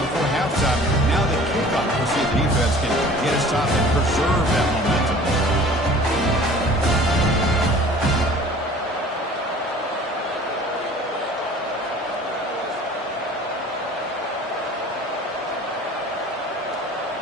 halftime. Now the kickoff. We'll see if the defense can get a stop and preserve that momentum.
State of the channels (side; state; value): both; normal; correlation 0.47